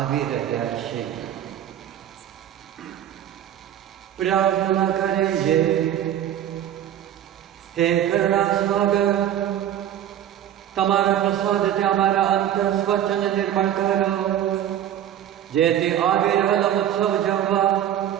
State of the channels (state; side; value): quieter; left; 10.9 dB